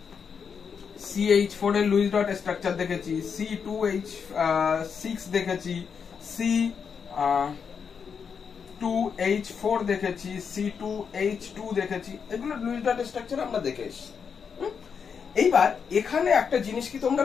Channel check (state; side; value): quieter; right; 6.4 dB